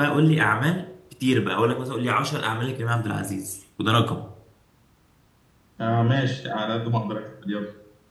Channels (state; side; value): identical; both; correlation 1.00